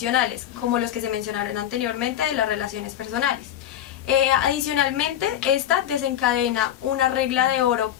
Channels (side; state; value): right; quieter; 11.2 dB